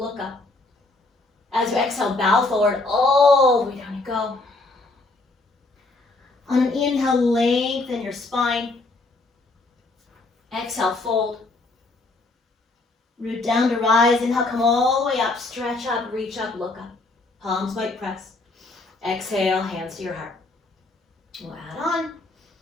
up. As you exhale, bow forward, all the way down you go. On an inhale, lengthen your spine. Exhale, fold. Root down to rise. Inhale, come all the way up, stretch up, reach up, look up. Palms might press. Exhale, hands to your heart. We'll add on.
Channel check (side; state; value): right; quieter; 3.2 dB